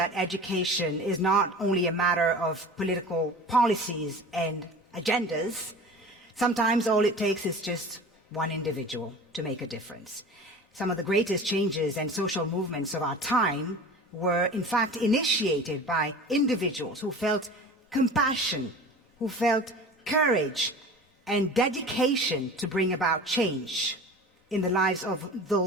education is not only a matter of political policies and agendas. Sometimes all it takes is just one individual to make a difference. Some of the greatest changes and social movements of our time were in fact initiated by individuals who felt compassion, who felt courage and dedication to bring about change in the lives of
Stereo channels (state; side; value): normal; both; correlation 0.38